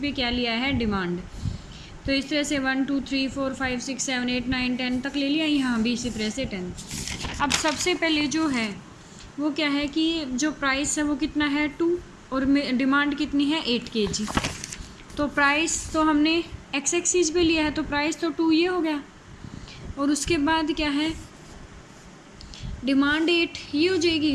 पे क्या लिया है, डिमांड। तो इस तरह से 1 2 3 4 5 6 7 8 9 10 तक ले लिया, यहाँ भी इसी तरह से 10। अब सबसे पहले जो है वो क्या है कि जो प्राइस है वो कितना है, 2, और डिमांड कितनी है, 8 kg। तो प्राइस तो हमने एक्स एक्सीज पे लिया है, तो प्राइस तो 2 ये हो गया, और उसके बाद क्या है, डिमांड 8 ये हो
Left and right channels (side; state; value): both; identical; correlation 1.00